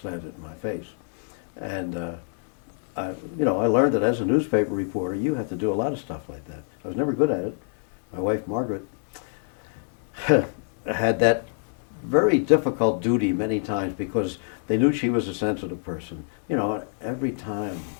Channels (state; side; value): silent; right; digital silence